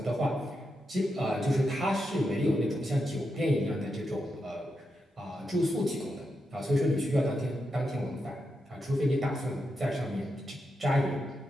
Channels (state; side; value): normal; both; correlation 0.86